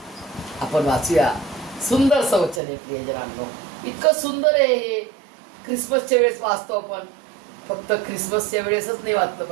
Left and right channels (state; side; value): drops out; left; at 2.6 s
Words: आपण वाचूया. सुंदर वचन आहे प्रियजनांनो, इतकं सुंदर आहे हे. ख्रिसमसच्या वेळेस वाचतो आपण. फक्त ख्रिसमसच्या वेळेसच नाही वाचलं